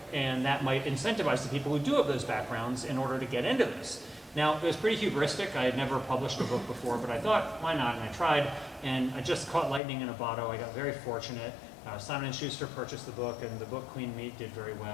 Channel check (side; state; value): right; drops out; at 9.8 s